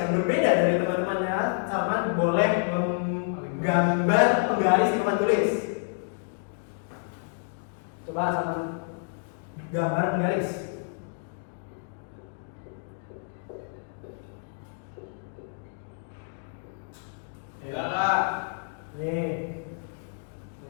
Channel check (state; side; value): silent; right; digital silence